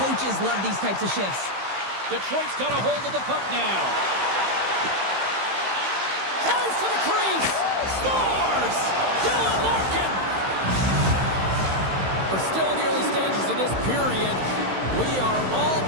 love these types of shifts. Detroit's got a hold of the puck now. Tries to the crease. Scores! Dylan Larkin! We're still in the early stages of this period. We are all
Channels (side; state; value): left; late; 16 ms